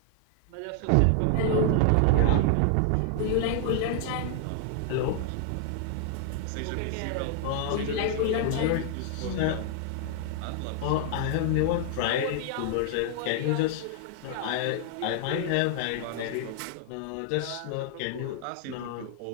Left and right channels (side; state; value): both; different; correlation 0.00